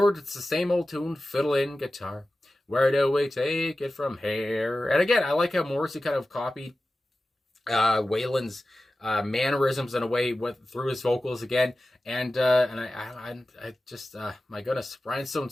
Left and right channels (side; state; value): both; normal; correlation 0.95